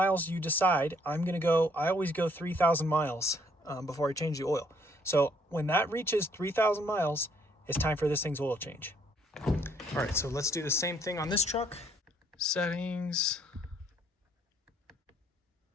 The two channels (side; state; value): both; normal; correlation 0.66